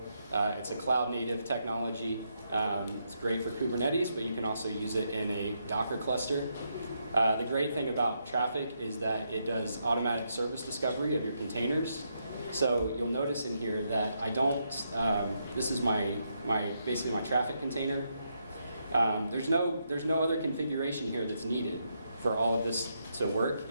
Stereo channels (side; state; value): both; inverted; correlation -0.80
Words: It's a cloud native technology. It's great for Kubernetes, but you can also use it in a Docker cluster. The great thing about traffic is that it does automatic service discovery of your containers. So you'll notice in here that I don't, this is basically my traffic container. There's no other configuration here that's needed for all of this to work